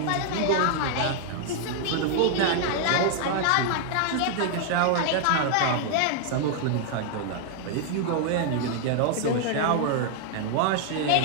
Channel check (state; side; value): different; both; correlation 0.00